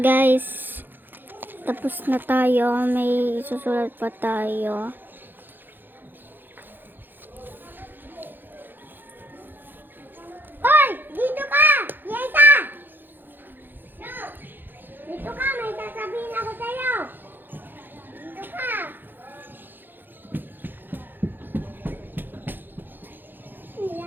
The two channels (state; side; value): late; left; 0.093 ms